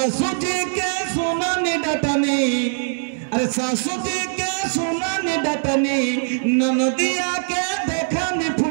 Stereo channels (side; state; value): left; silent; digital silence